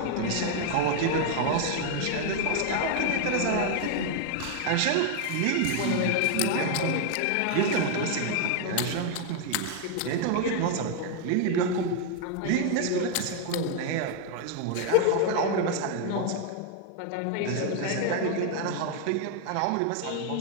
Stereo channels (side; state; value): both; different; correlation 0.00